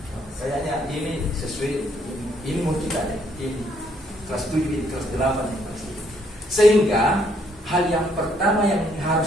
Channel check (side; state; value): both; normal; correlation 0.69